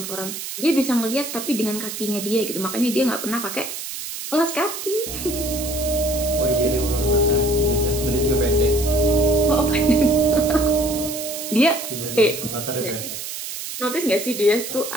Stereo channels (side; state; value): right; noise; hiss, 8 dB below the sound